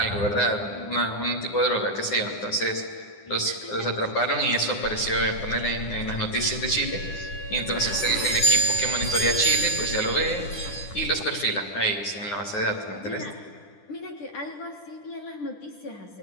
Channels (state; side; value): late; right; 10 ms